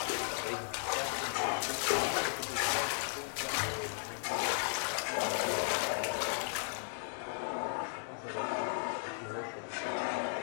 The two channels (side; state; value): right; silent; digital silence